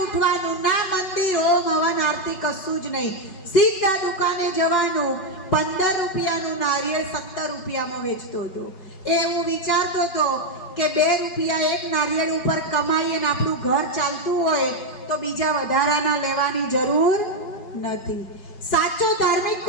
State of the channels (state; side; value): late; right; 5.3 ms